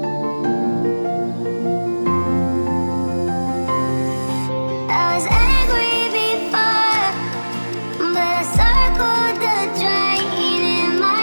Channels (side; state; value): both; inverted; correlation -1.00